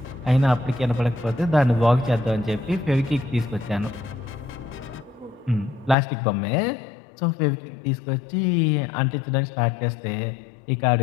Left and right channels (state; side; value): drops out; right; at 6.0 s